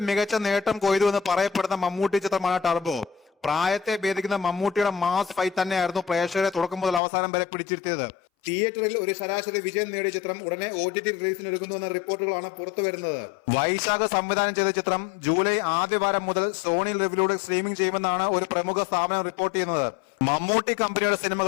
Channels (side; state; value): right; drops out; at 7.0 s